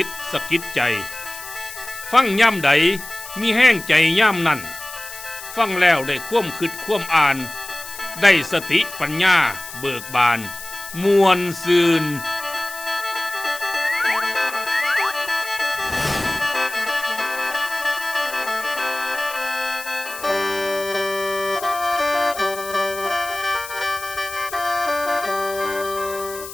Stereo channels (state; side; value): noise; left; hiss, 12 dB below the sound